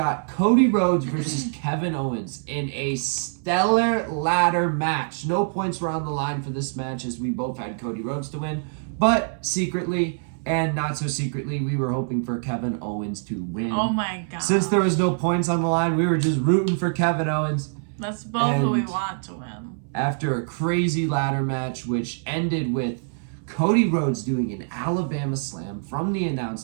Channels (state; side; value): silent; left; 61 dB below the other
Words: Cody Rhodes versus Kevin Owens in a stellar ladder match. No points were on the line for this match as we both had Cody Rhodes to win. But secretly and not so secretly, we were hoping for Kevin Owens to win. Oh my God. Since there was no points on the line, we were just rooting for Kevin Owens. That's both who we want to win. After a crazy ladder match, which ended with Cody Rhodes doing an Alabama slam from the